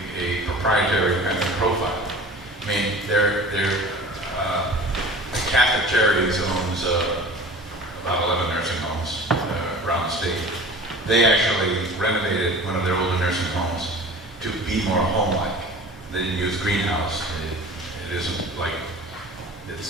proprietary kind of profile. I mean, Catholic Charities owns about 11 nursing homes around the state. They actually renovated one of their older nursing homes to be more home-like. They didn't use greenhouse. It isn't like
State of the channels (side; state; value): both; normal; correlation 0.40